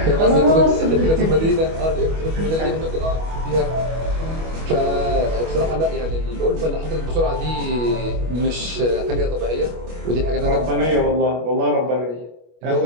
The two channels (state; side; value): late; left; 25 ms